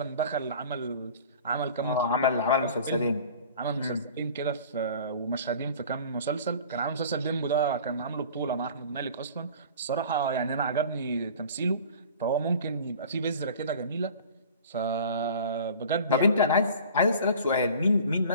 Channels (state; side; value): inverted; both; correlation -0.43